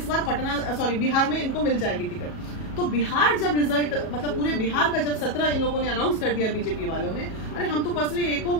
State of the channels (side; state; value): right; late; 37 ms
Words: बार बिहार में इनको मिल जाएगी टिकट। तो बिहार जब रिजल्ट, मतलब पूरे बिहार का जब 17 इन लोगों ने अनाउंस कर दिया बीजेपी वालों ने, अरे हम तो पर्सनली एको